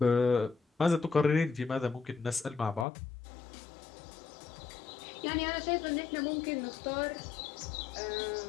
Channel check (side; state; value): right; drops out; at 2.9 s